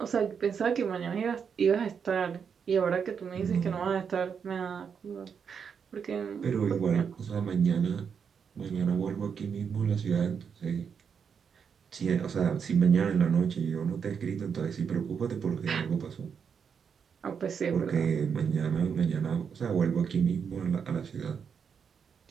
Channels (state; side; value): quieter; left; 6.7 dB